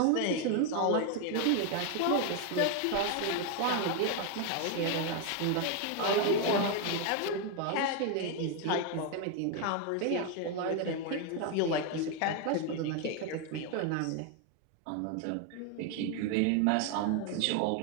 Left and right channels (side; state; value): both; different; correlation 0.01